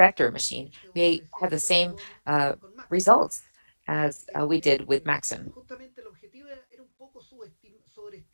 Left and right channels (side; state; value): both; inverted; correlation -1.00